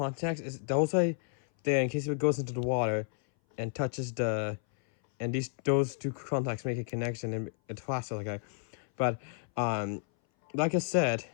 is those way there in case if it goes into the water and touches those two contacts make a connection and it flashes like that. But like I said,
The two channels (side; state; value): right; silent; 57 dB below the other